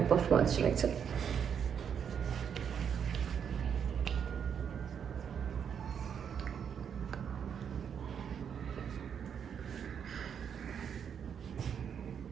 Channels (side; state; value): left; quieter; 7.7 dB